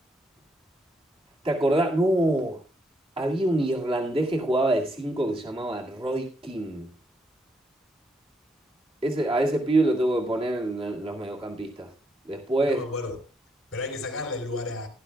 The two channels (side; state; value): both; normal; correlation 0.76